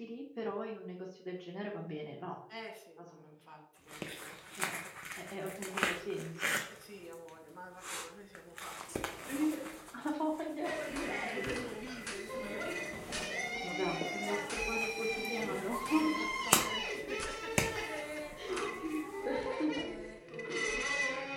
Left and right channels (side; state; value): both; identical; correlation 1.00